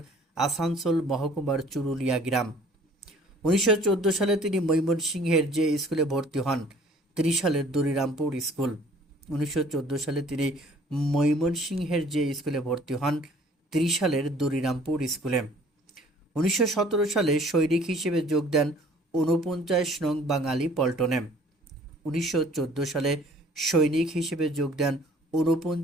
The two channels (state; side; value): normal; both; correlation 0.54